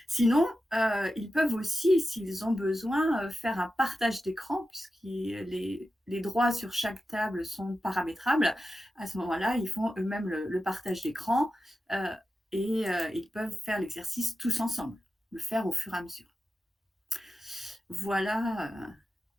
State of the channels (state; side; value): normal; both; correlation 0.91